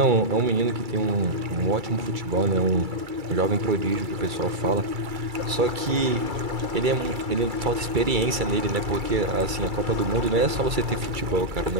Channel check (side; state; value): left; late; 2.3 ms